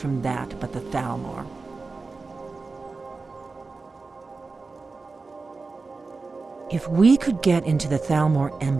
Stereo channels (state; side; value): quieter; left; 4.0 dB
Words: that but the Talmor? If we could get into the Talmor